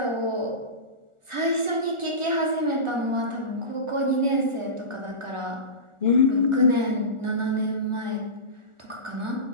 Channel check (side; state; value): left; late; 1.4 ms